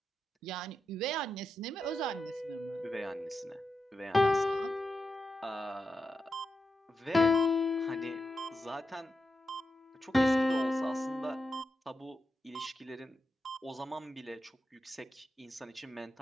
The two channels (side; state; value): both; normal; correlation 0.87